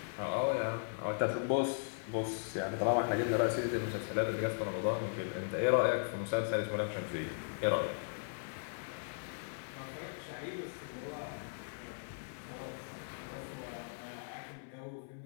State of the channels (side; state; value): right; silent; 53 dB below the other